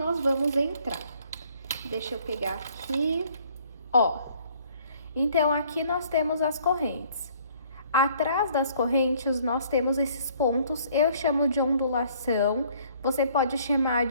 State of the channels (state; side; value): inverted; both; correlation -0.60